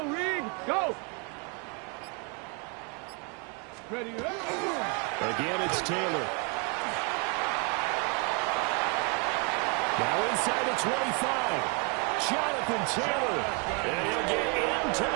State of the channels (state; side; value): quieter; left; 34.4 dB